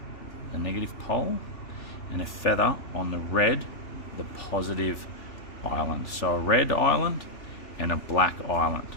and a feather on the red, the positive island. So a red island and a black island.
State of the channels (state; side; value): late; right; 3.4 ms